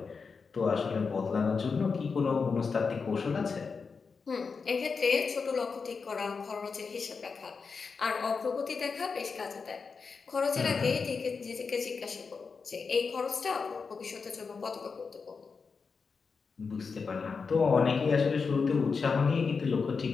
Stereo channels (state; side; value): quieter; right; 5.1 dB